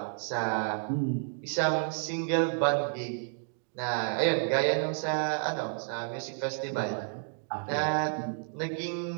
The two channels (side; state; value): left; silent; 57 dB below the other